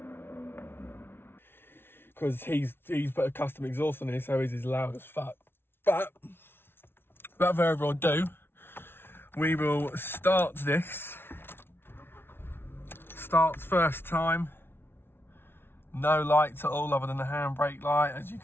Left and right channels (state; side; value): late; right; 0.11 ms